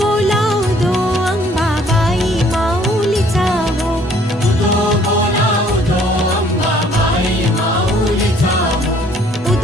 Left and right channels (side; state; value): both; normal; correlation 0.60